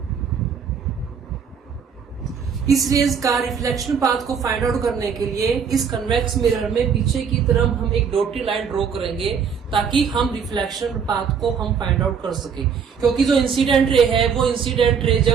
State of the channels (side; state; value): left; quieter; 6.7 dB